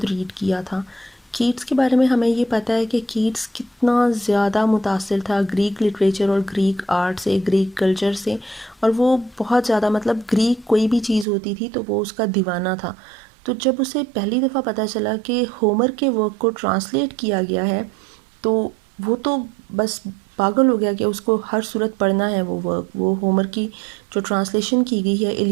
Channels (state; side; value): drops out; left; at 11.2 s